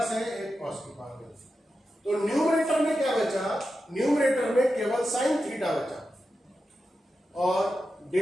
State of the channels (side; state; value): both; normal; correlation 0.90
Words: से एक cos की पावर कैंसिल। तो न्यूमरेटर में क्या बचा? न्यूमरेटर में केवल साइन थीटा बचा और